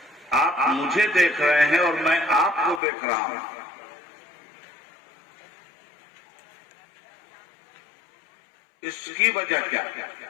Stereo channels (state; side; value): drops out; right; at 2.8 s